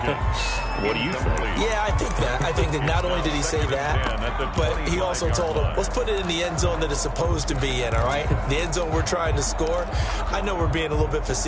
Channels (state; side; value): identical; both; correlation 1.00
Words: do you think? Yeah, I think that. I think that not only did he say that, but he also told him, let's put it in the end zone that it's supposed to be in, all right? The end zone we're trying to score. I know we're being a little bit